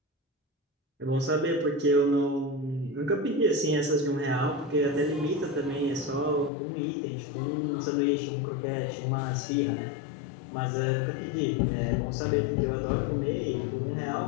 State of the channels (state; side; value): drops out; right; at 6.5 s